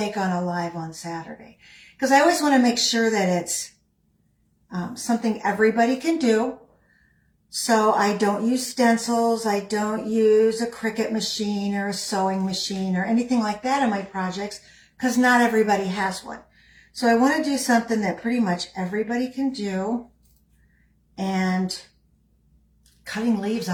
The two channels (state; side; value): identical; both; correlation 1.00